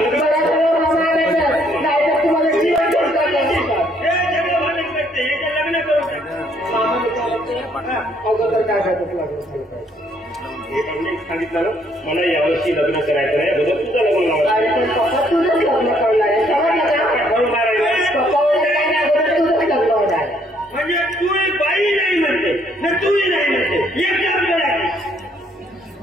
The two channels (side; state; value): both; normal; correlation 0.67